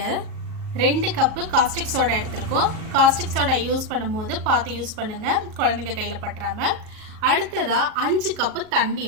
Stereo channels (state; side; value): late; left; 38 ms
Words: 2 கப்பு காஸ்டிக் சோடா எடுத்திருக்கோம். காஸ்டிக் சோடா யூஸ் பண்ணும்போது பார்த்து யூஸ் பண்ணுங்கள், குழந்தைங்க கையில் பற்றாமல். அடுத்ததாக 5 கப்பு தண்ணி